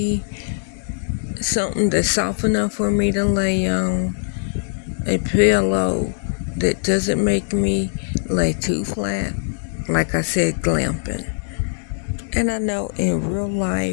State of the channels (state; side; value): silent; right; digital silence